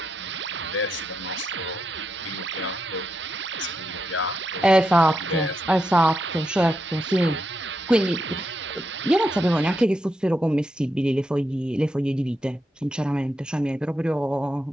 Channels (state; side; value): normal; both; correlation 0.84